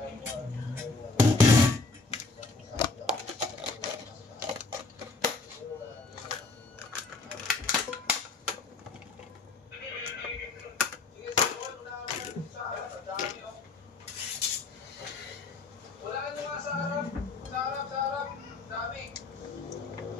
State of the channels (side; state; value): right; quieter; 3.6 dB